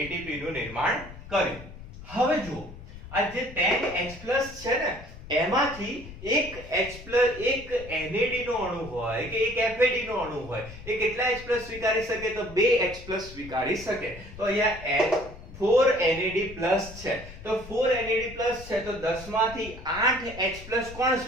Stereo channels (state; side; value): noise; left; rumble, 15 dB below the sound